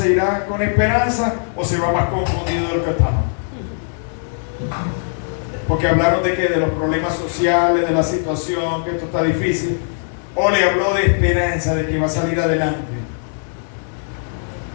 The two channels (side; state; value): right; silent; digital silence